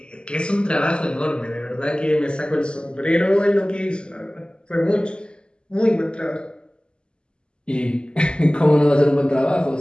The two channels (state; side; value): late; right; 0.050 ms